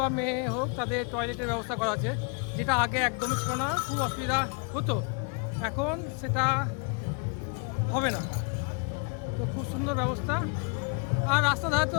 মেয়ে হোক, তাদের টয়লেটের ব্যবস্থা করা আছে, যেটা আগে একদমই ছিল না, খুব অসুবিধা হতো। এখন সেটা হবে না, তো খুব সুন্দর ব্যবস্থা। আর রাস্তা ধারে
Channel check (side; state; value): right; quieter; 36.3 dB